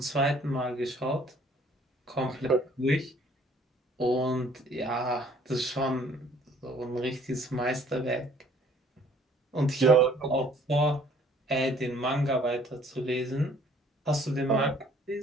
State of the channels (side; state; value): both; normal; correlation 0.58